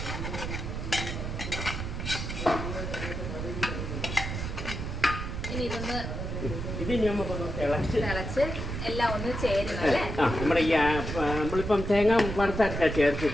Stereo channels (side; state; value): right; noise; rumble, 5 dB below the sound